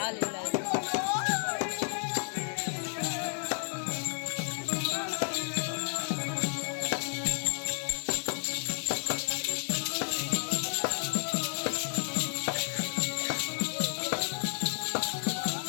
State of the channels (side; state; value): right; silent; digital silence